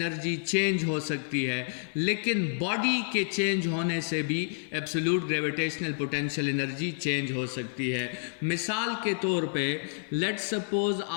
change हो सकती है, लेकिन बॉडी के चेंज होने से भी absolute gravitational potential energy change हो सकती है। मिसाल के तौर पे लेट्स सपोज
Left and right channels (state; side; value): silent; right; digital silence